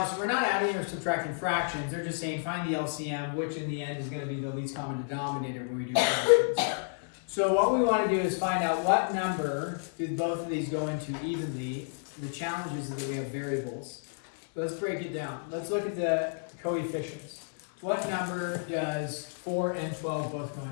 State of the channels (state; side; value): silent; right; digital silence